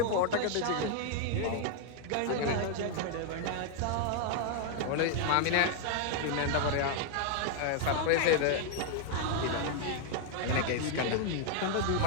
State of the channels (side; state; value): both; different; correlation 0.00